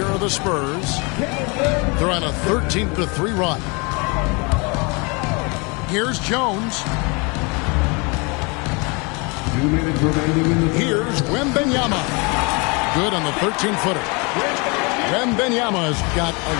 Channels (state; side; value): quieter; right; 30.0 dB